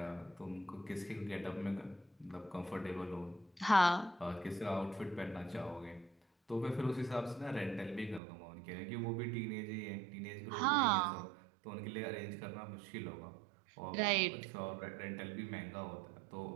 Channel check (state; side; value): drops out; left; at 8.2 s